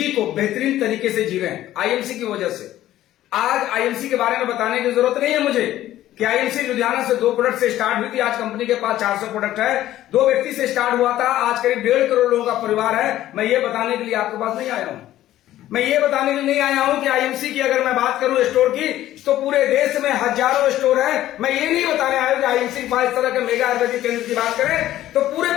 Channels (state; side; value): quieter; right; 13.7 dB